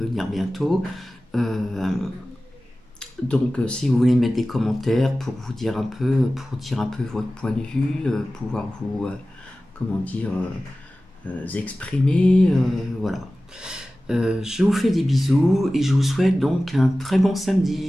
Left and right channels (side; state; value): both; normal; correlation 0.96